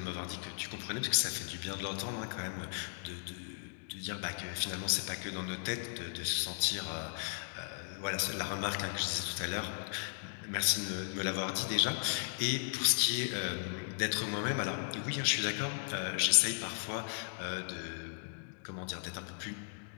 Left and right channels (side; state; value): right; silent; digital silence